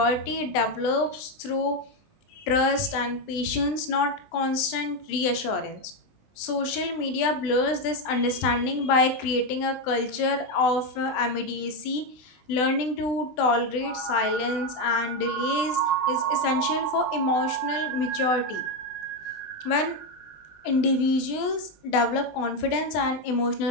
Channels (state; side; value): late; right; 20 ms